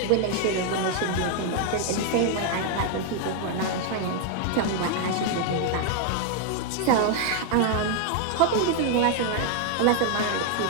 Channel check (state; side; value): different; both; correlation 0.00